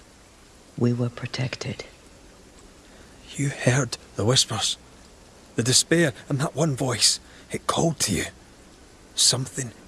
We were protected. You heard the whispers, the despair, and that one voice. It called to you. Something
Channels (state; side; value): identical; both; correlation 1.00